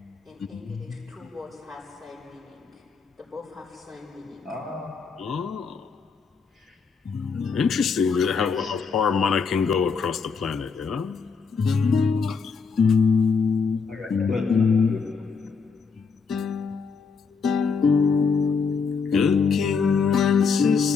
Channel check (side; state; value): right; quieter; 5.3 dB